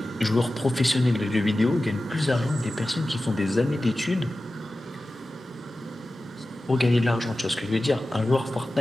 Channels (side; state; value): both; normal; correlation 0.95